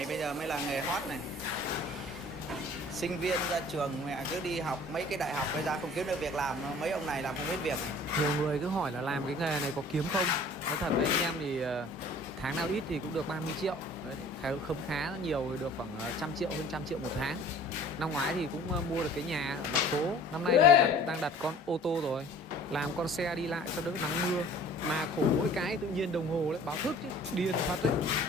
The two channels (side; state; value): both; normal; correlation 0.49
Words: bây giờ mới là nghề hot này. Sinh viên ra trường mẹ cứ đi học mấy cái đại học bây giờ không kiếm được việc làm, mấy ông này làm không biết việc. Nhiều người cứ hỏi là làm cái nghề này có kiếm không. Nói thật với anh em thì tháng nào ít thì cũng được 30 triệu. Đấy, không khá nhiều thì được khoảng 100 triệu, hơn 100 triệu một tháng. Năm ngoái thì cũng mua được cái nhà thành phố. Năm nay thì đang đặt con ô tô rồi, làm con xe đi lại cho đỡ nắng mưa. Mà khổ mỗi cái tự nhiên đồng hồ lại báo thức điên phát đấy.